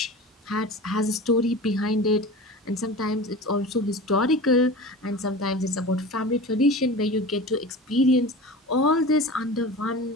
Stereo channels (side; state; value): both; normal; correlation 0.34